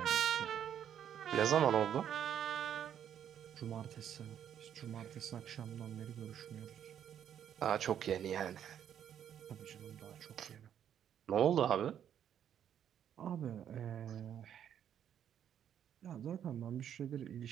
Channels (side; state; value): left; quieter; 9.5 dB